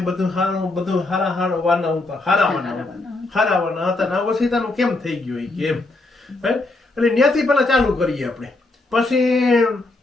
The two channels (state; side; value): quieter; right; 3.1 dB